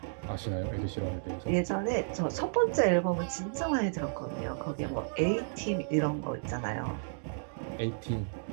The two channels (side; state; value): left; silent; digital silence